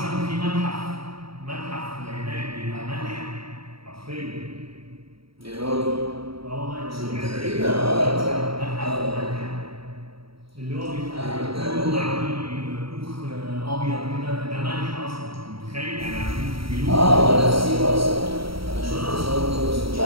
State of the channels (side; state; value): left; late; 0.75 ms